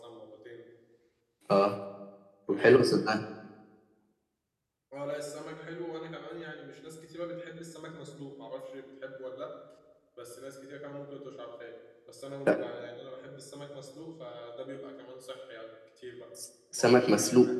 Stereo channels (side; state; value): both; identical; correlation 1.00